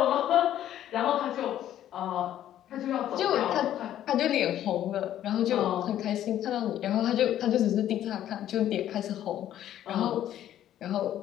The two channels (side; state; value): right; quieter; 11.7 dB